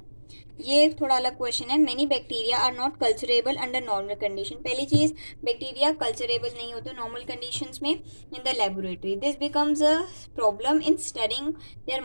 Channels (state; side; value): inverted; both; correlation -1.00